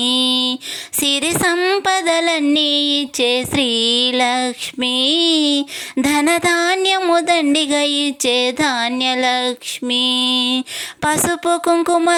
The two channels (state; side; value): identical; both; correlation 1.00